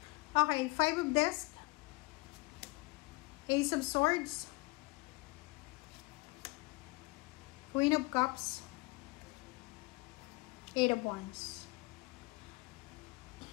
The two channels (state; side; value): quieter; right; 25.0 dB